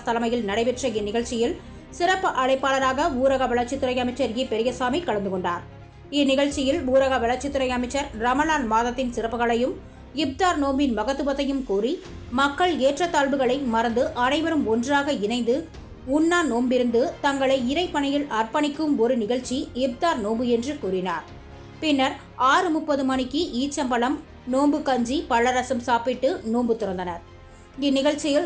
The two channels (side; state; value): both; identical; correlation 1.00